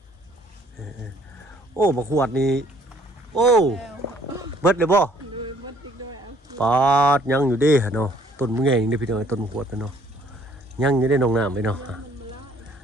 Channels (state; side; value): normal; both; correlation 0.61